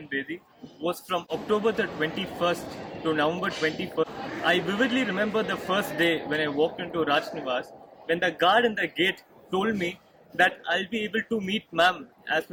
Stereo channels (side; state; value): both; identical; correlation 1.00